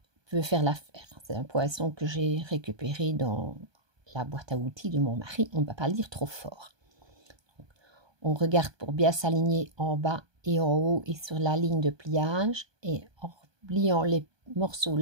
peut faire l'affaire. C'est un poinçon que j'ai récupéré dans la boîte à outils de mon mari. On ne va pas le dire trop fort. On regarde pour bien s'aligner en bas et en haut et sur la ligne de pliage, et en pliant les morceaux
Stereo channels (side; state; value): left; late; 1.2 ms